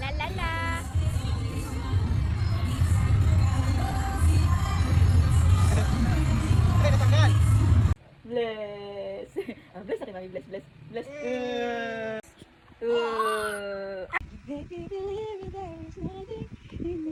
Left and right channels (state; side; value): identical; both; correlation 1.00